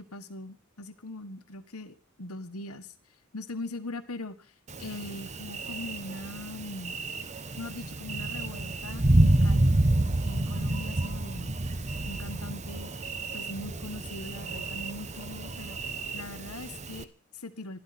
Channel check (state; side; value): normal; both; correlation 0.86